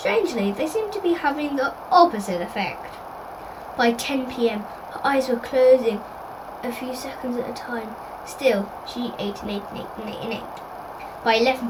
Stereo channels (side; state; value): both; identical; correlation 1.00